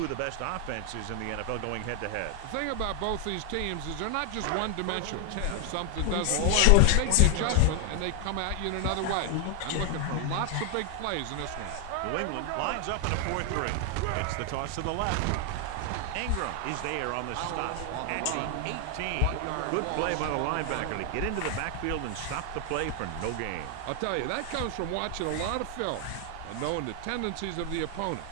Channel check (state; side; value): different; both; correlation 0.00